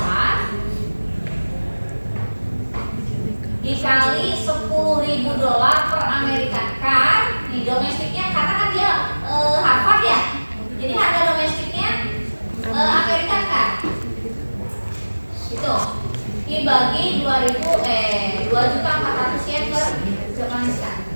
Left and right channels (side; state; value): both; inverted; correlation -1.00